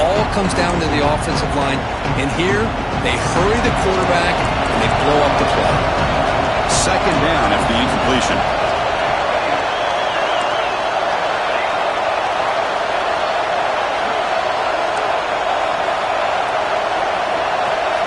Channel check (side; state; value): both; identical; correlation 1.00